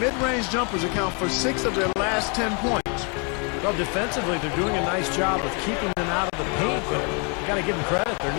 jumpers account for 6 of their last 10 points. Well, defensively, they're doing a nice job of keeping them out of the paint, but you got to give them credit. They're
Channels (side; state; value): right; quieter; 35.5 dB